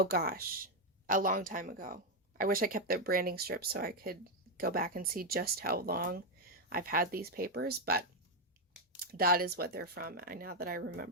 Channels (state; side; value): normal; both; correlation 0.02